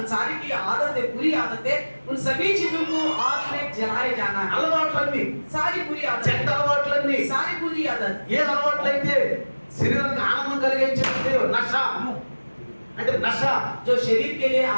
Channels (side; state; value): both; inverted; correlation -1.00